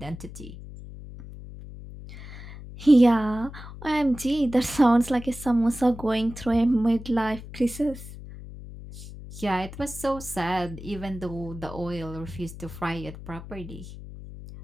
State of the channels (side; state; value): left; noise; hum, 13 dB below the sound